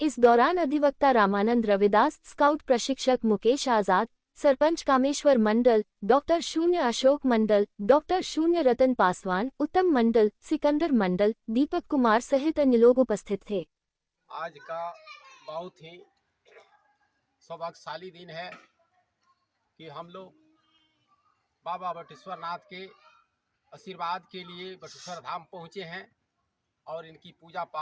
दौरान अधिवक्ता रामानंद रविदास, स्काउट प्रशिक्षक मुकेश आजाद, सरपंच कामेश्वर मंडल, डॉक्टर शून्य अशोक मंडल, डॉक्टर शून्य रतन पासवान, उत्तम मंडल, सिकंदर मंडल, दीपक कुमार सहित अन्य लोग उपस्थित थे। आज का बहुत ही सौभाग्यशाली दिन है कि हम लोग बाबा बटेश्वरनाथ के आशीर्वाद के लिए बटेश्वर धाम पहुँचे हैं और इनकी पूजा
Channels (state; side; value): identical; both; correlation 1.00